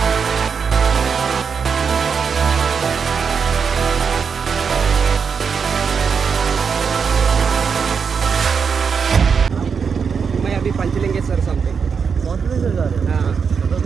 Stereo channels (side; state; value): left; quieter; 6.1 dB